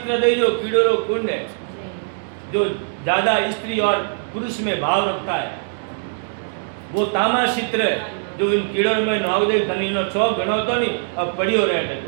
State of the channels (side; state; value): left; silent; digital silence